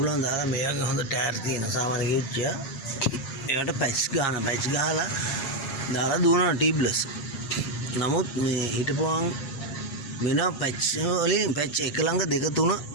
දාලා මේකේ හොඳ ටයර් තියෙන සාමාන්‍ය කිව්චිය ඒකට පැච් ගහලා දාලා දුවනවා ටියුබ්ලස්. නමුත් මේ හිටපුවාන් වෙන පැච් වලින් පැච් එක ළඟ දෙක තුන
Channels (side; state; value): right; late; 7.4 ms